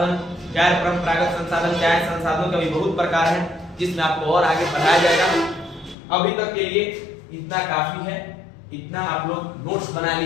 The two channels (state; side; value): drops out; right; at 6.0 s